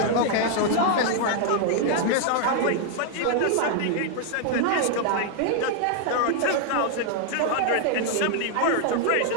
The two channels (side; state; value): both; different; correlation 0.00